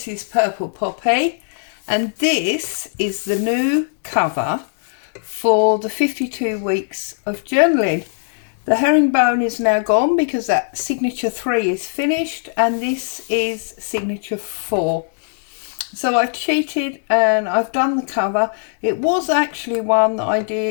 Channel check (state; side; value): silent; right; digital silence